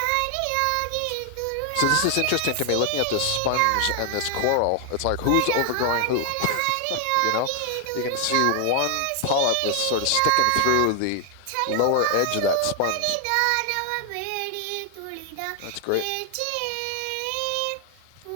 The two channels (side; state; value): both; different; correlation 0.00